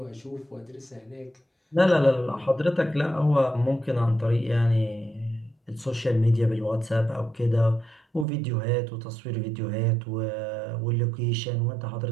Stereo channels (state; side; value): drops out; left; at 8.2 s